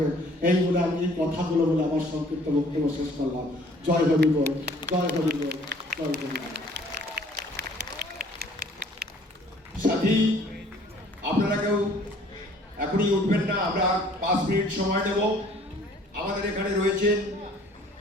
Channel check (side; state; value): both; normal; correlation 0.55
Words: এই বলে আমি এই কথাগুলো বলে আমার সংক্ষিপ্ত বক্তব্য শেষ করলাম। জয় হরি বল, জয় হরি বল, জয় হরি বল। সাথী, আপনারা কেউ এখনই উঠবেন না, আমরা 5 মিনিট সময় নেব। আমাদের এখানে রয়েছেন